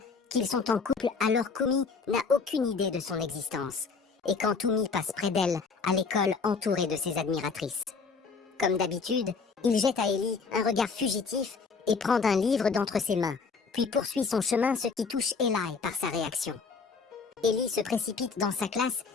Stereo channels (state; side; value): quieter; right; 4.9 dB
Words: qu'ils sont en couple alors qu'Umi n'a aucune idée de son existence. Et quand Umi passe près d'elle, à l'école entourée de ses admiratrices. Comme d'habitude, il jette à Ellie un regard fugitif et prend un livre d'entre ses mains, puis poursuit son chemin, ce qui touche Eli par sa réaction. Ellie se précipite dans sa classe